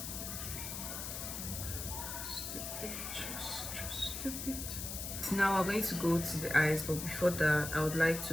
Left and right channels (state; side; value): noise; left; hiss, 6 dB below the sound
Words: Just a bit, just a bit. Now we're going to go to the eyes, but before that I would like to